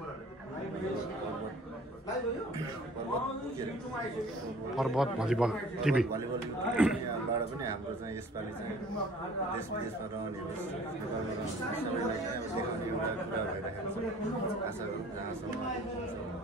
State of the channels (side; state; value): both; normal; correlation 0.50